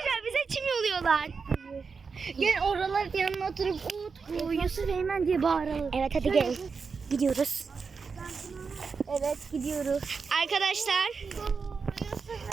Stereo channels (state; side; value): quieter; left; 5.2 dB